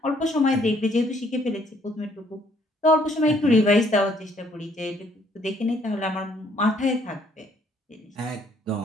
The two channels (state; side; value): normal; both; correlation 0.65